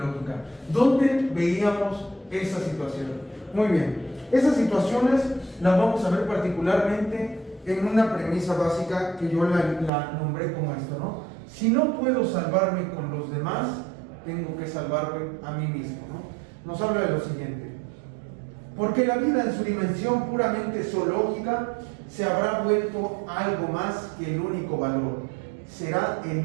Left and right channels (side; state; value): left; drops out; at 9.9 s